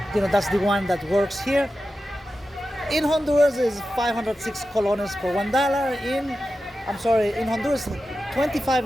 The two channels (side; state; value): both; normal; correlation 0.92